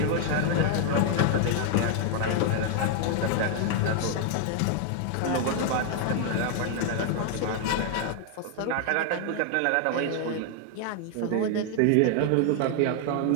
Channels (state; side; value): different; both; correlation 0.00